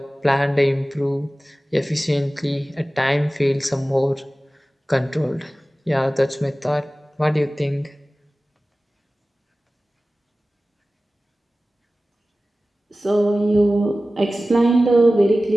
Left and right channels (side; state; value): both; normal; correlation 0.96